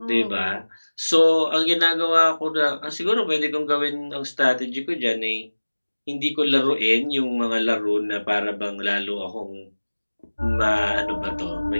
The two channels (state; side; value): inverted; both; correlation -1.00